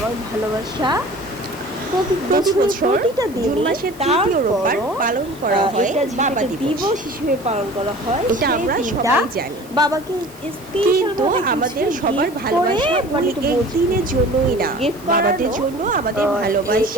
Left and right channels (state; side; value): noise; right; hiss, 23 dB below the sound